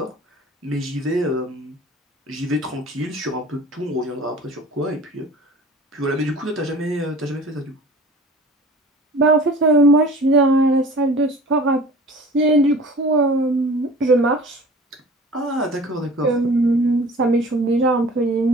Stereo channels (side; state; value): both; normal; correlation 0.43